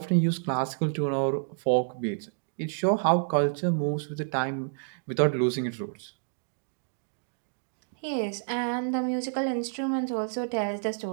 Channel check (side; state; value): left; silent; digital silence